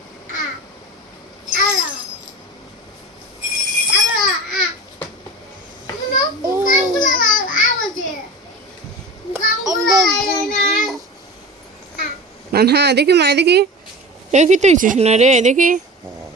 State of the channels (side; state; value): both; normal; correlation 0.33